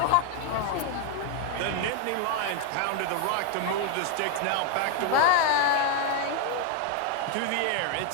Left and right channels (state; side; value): different; both; correlation 0.01